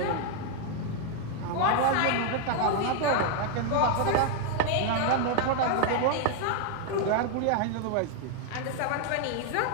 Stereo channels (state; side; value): different; both; correlation 0.00